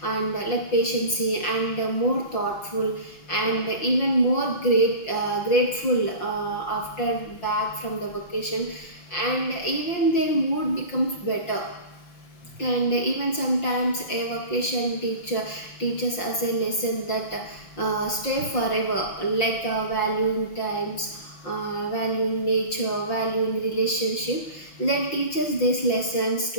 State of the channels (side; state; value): right; late; 5.7 ms